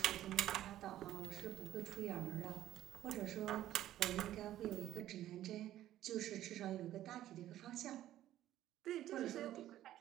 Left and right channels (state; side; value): quieter; left; 13.2 dB